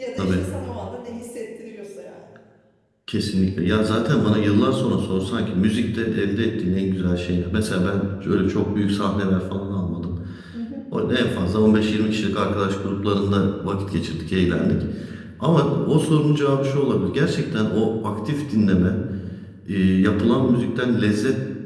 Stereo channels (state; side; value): identical; both; correlation 1.00